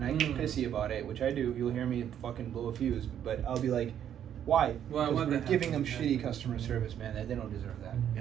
I get pissy about it, which I do, you'll hear me fucking blow a fuse, but I'll be like, why? Why- Because why we're that giving them happens, shitty yeah. customer service, man. That they don't deserve that.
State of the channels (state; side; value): quieter; left; 9.8 dB